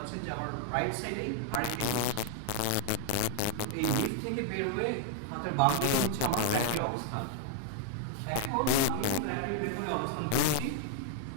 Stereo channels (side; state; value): both; different; correlation 0.00